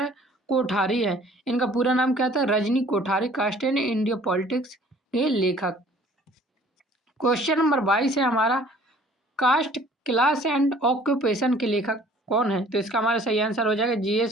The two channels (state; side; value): normal; both; correlation 0.54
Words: है कोठारी है। इनका पूरा नाम क्या था? Rajni Kothari, caste in India politics के लेखक। क्वेश्चन नंबर 22 है हमारा, कास्ट क्लास एंड ऑक्यूपेशन के लेखक कौन है? तो इसका हमारा सही आंसर हो जाएगा